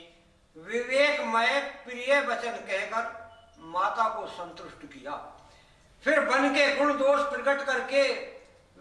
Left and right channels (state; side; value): identical; both; correlation 1.00